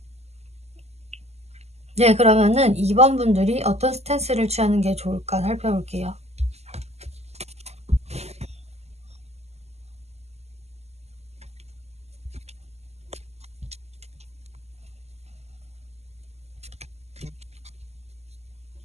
네, 그러면은 2번 분들이 어떤 스탠스를 취하는 게 좋을까 살펴볼게요.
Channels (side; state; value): left; late; 0.31 ms